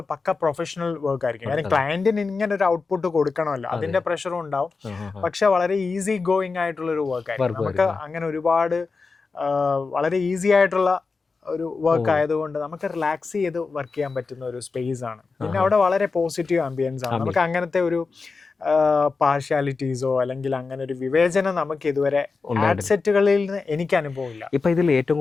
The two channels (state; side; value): quieter; right; 4.4 dB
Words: പക്ക പ്രൊഫഷണൽ വർക്ക് ആയിരിക്കും. കാരണം ക്ലയന്റിന് ഇങ്ങനെ ഒരു ഔട്ട്പുട്ട് കൊടുക്കണമല്ലോ, അതിന്റെ പ്രഷറും ഉണ്ടാവും. പക്ഷെ വളരെ ഈസി ഗോയിങ് ആയിട്ടുള്ള ഒരു വർക്ക് ആയിരിക്കും. നമുക്ക് അങ്ങനെ ഒരുപാട് വളരെ ഈസി ആയിട്ടുള്ള ഒരു വർക്ക് ആയതുകൊണ്ട് നമുക്ക് റിലാക്സ് ചെയ്ത് വർക്ക് ചെയ്യാൻ പറ്റുന്ന ഒരു സ്പേസ് ആണ്. പിന്നെ അവിടെ വളരെ പോസിറ്റീവ് ആംബിയൻസ് ആണ്. നമുക്ക് അങ്ങനത്തെ ഒരു പാർഷ്യാലിറ്റീസോ അല്ലെങ്കിൽ അങ്ങനെ ഒരു വിവേചനം നമുക്ക് ഇതുവരെ സെറ്റുകളിൽ നിന്ന് എനിക്ക് അനുഭവമില്ല. ഇപ്പൊ ഇതിൽ ഏറ്റവും